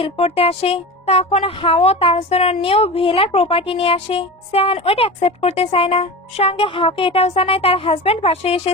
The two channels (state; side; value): normal; both; correlation 0.29